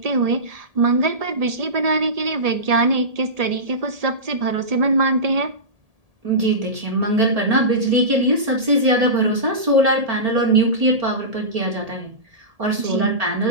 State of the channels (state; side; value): late; left; 1.7 ms